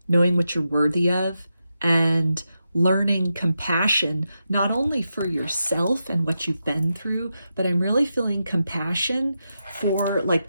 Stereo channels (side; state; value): both; inverted; correlation -0.87